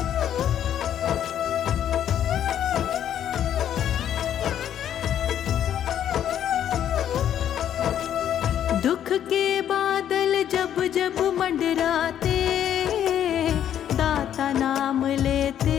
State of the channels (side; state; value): right; quieter; 10.2 dB